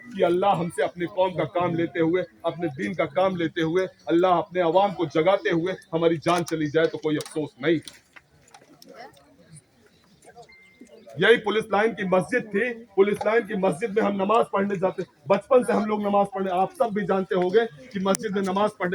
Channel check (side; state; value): both; identical; correlation 1.00